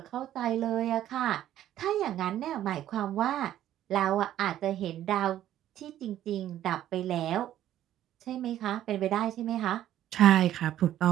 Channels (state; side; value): quieter; left; 12.2 dB